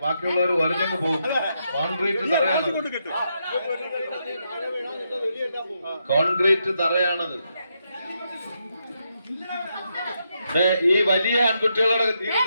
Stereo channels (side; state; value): both; inverted; correlation -0.81